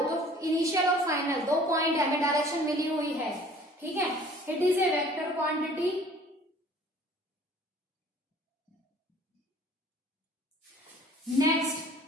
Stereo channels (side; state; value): both; normal; correlation 0.52